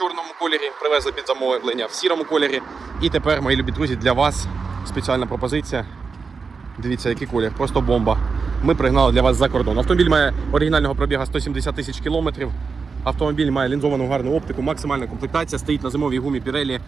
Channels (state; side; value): quieter; left; 5.0 dB